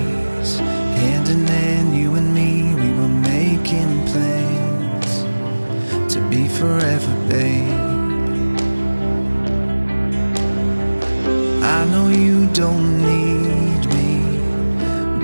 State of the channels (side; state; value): both; inverted; correlation -1.00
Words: hand in hand, you and me, we were making plans to be forever, babe. I know you don't need me,